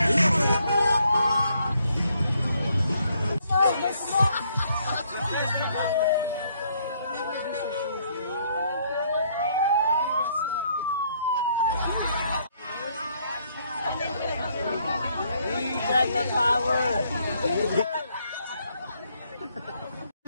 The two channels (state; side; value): inverted; both; correlation -0.69